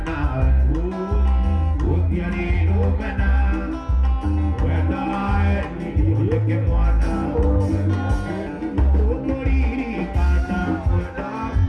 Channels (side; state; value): both; identical; correlation 1.00